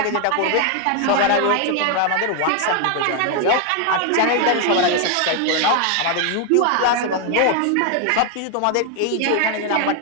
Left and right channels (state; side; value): different; both; correlation 0.01